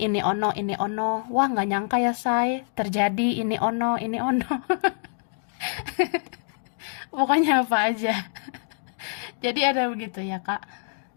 ono, ini ono. Wah nggak nyangka ya say, terjadi ini ono, ini ono. Pokoknya apa aja. Jadi ada begitu ya kak.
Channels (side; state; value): right; silent; digital silence